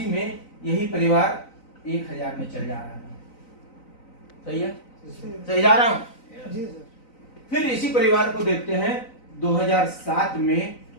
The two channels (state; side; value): late; right; 3.9 ms